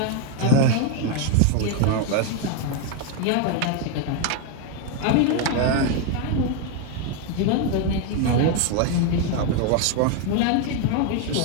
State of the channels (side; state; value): both; different; correlation 0.01